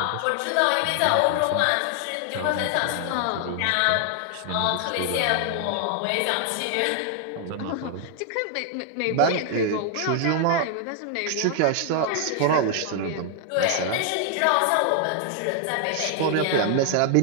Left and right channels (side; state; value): both; different; correlation 0.00